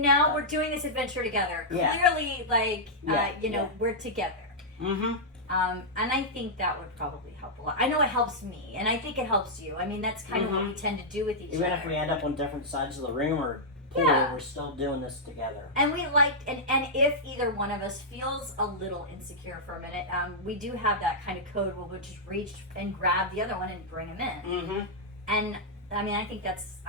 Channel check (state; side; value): normal; both; correlation -0.08